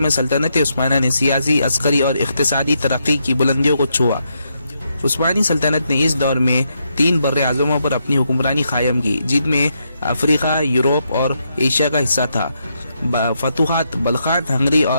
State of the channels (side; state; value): both; inverted; correlation -0.80